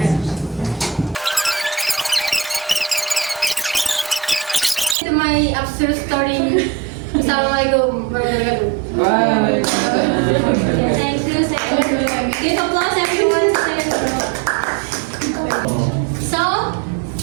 My absurd story Assalamualaikum warahmatullahi wabarakatuh. Bye. Thank you. Give applause everyone. So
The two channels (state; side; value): drops out; left; at 5.0 s